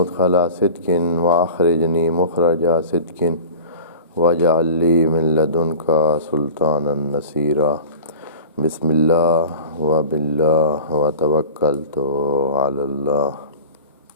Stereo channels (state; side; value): inverted; both; correlation -0.37